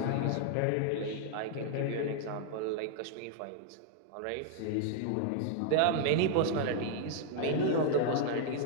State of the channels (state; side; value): different; both; correlation 0.00